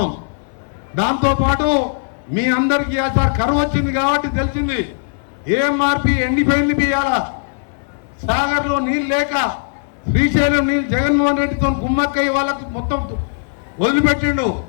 దాంతోపాటు మీ అందరికీ సార్ కరువు వచ్చింది కాబట్టి తెలిసింది ఏఎంఆర్పి ఎండిపోయింది బియ్యాల. సాగర్లో నీళ్ళు లేక శ్రీశైలం నీళ్ళు జగన్మోహన్ రెడ్డితో కుమ్మక్కయ్య వాళ్ళకు మొత్తం వదిలిపెట్టిండు.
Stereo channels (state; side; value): silent; right; 64 dB below the other